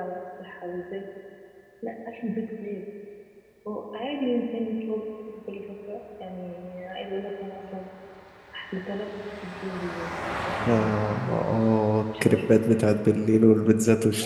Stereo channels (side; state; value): both; identical; correlation 1.00